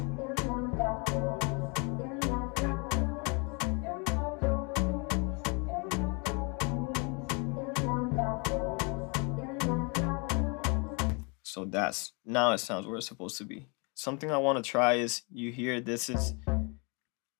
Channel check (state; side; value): quieter; right; 32.5 dB